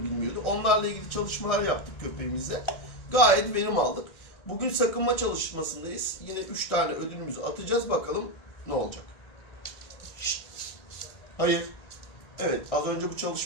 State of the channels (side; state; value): right; late; 1.7 ms